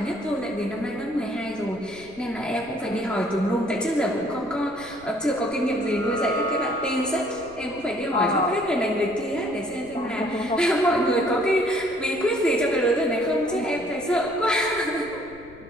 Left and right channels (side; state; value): left; noise; rumble, 23 dB below the sound